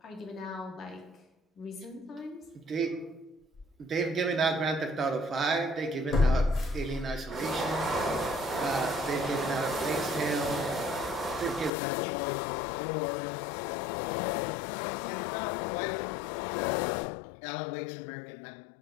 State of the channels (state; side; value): drops out; right; at 11.7 s